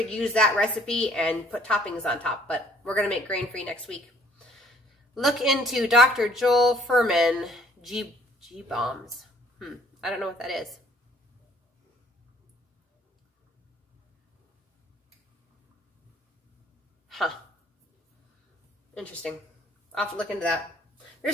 use that recipe and put toppings on top, but we're going to make grain-free next week. Look into Dr. Joel Furman G-bombs. I don't know what that is. Huh. Interesting. I'll have to look into that.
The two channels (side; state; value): both; normal; correlation 0.60